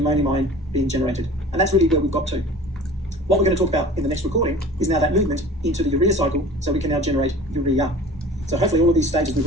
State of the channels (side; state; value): both; normal; correlation 0.41